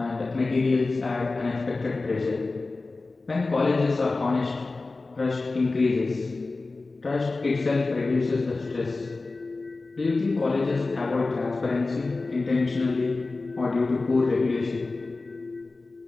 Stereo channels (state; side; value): quieter; right; 3.5 dB